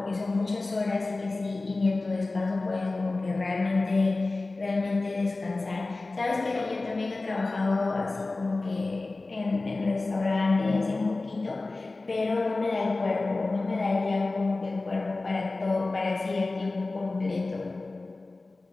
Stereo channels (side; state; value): right; quieter; 3.3 dB